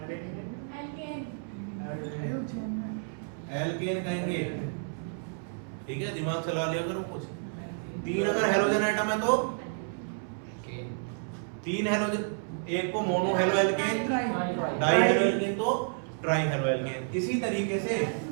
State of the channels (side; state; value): left; silent; 58 dB below the other